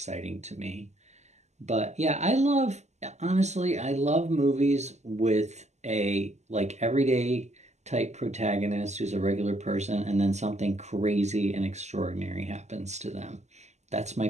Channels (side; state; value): left; late; 0.33 ms